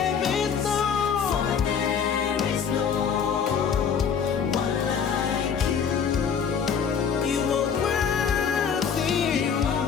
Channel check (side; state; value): right; quieter; 7.0 dB